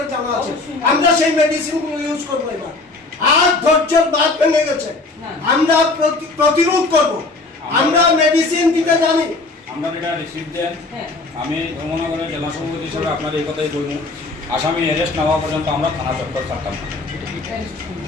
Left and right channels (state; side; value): quieter; right; 3.3 dB